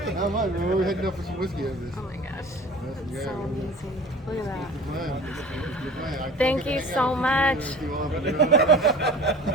Not much, man. We're heading up for some whiskey after this. Oh my gosh. That's So amazing. Look at that. the plan. Thank you so much.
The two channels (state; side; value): normal; both; correlation 0.42